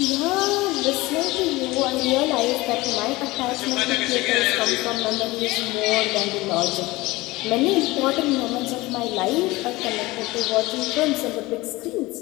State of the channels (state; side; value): quieter; right; 20.6 dB